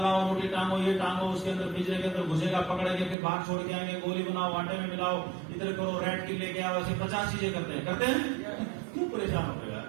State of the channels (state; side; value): drops out; left; at 3.2 s